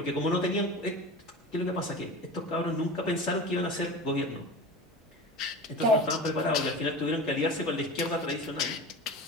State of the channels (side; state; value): both; normal; correlation 0.32